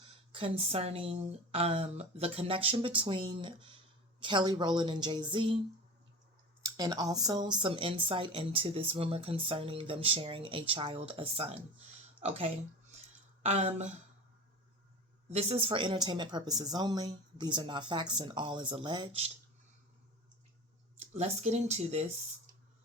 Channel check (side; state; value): both; normal; correlation 0.32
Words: concerning the connection between Kelly Rowland and JayZ, and also some insight into this rumor concerning them sharing a child, a son. Okay. Um, this is for entertainment purposes only. These are not facts, and all is alleged. Let's get into this